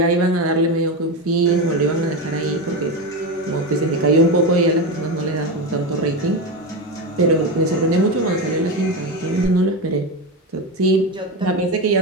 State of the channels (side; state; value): both; normal; correlation 0.16